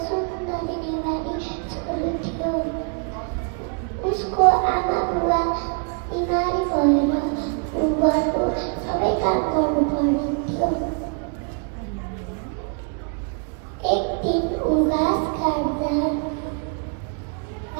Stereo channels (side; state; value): left; quieter; 39.9 dB